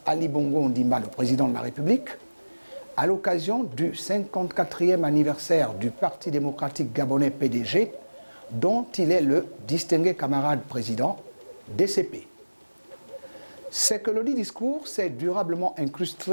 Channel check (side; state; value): both; inverted; correlation -1.00